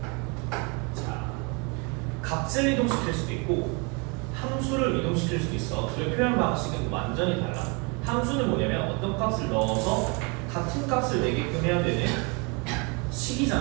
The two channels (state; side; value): quieter; left; 31.7 dB